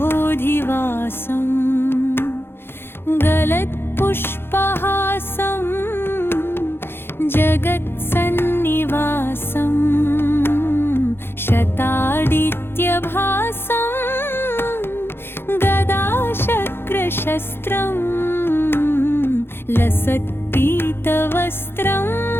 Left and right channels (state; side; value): late; right; 0.11 ms